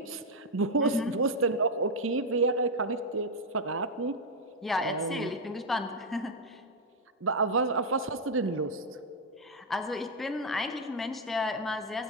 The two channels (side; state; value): both; normal; correlation 0.02